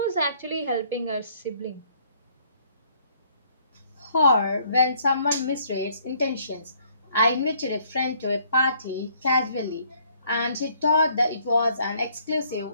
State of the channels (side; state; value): both; inverted; correlation -0.64